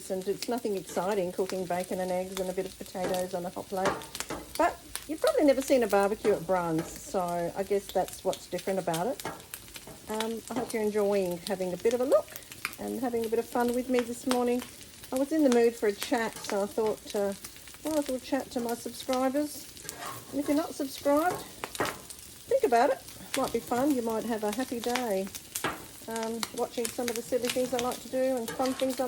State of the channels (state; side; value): identical; both; correlation 1.00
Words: and it's nothing exciting cooking bacon and eggs and a bit of potatoes on a hot plate. But you've probably never seen a barbecue at Brun's, so I guess that's what's different about it. I hope you're enjoying having a bit of a look and having a bit of fun with me this morning. I was in the mood for a chat, so I thought, well, I'll chat to my subscribers. And if you're not subscribed, think about it. Might be fun. You might have a happy day watching some of the silly things I like to do and fun things I